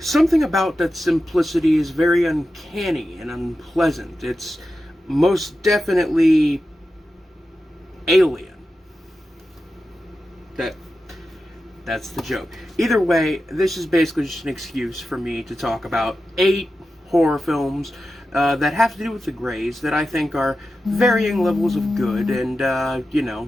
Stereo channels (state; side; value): normal; both; correlation 0.91